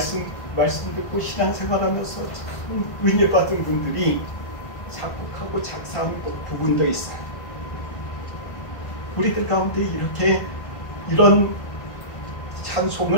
듣고 신앙생활하면서 참 은혜 받은 분들이 작곡하고 작사한 부분도 있어요. 우리들 가운데 이렇게 이런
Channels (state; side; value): late; right; 1.6 ms